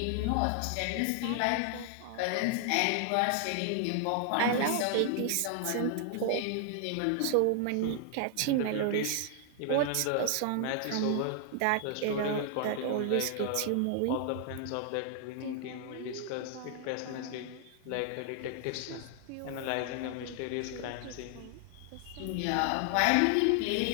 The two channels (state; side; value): different; both; correlation 0.00